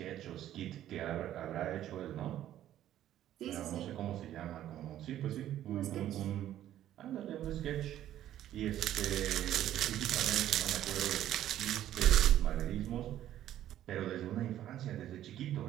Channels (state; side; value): quieter; left; 12.2 dB